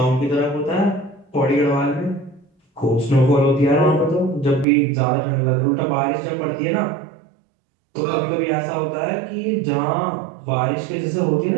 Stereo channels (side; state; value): left; drops out; at 4.7 s